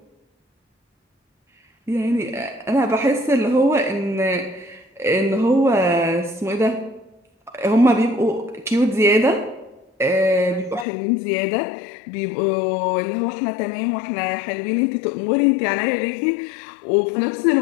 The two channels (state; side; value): drops out; right; at 10.9 s